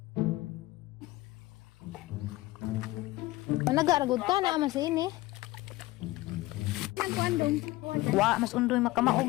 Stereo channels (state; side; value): quieter; right; 18.7 dB